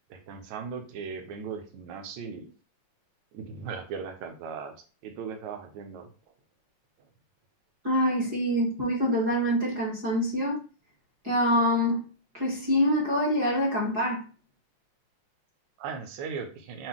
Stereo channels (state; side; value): late; left; 4.8 ms